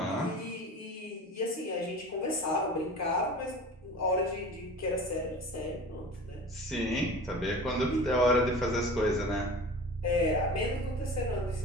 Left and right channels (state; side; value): normal; both; correlation 0.38